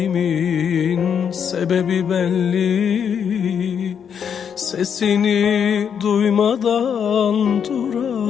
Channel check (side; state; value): right; quieter; 7.6 dB